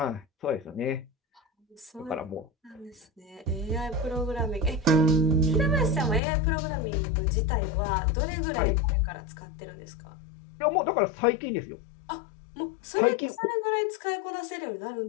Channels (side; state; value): right; drops out; at 6.2 s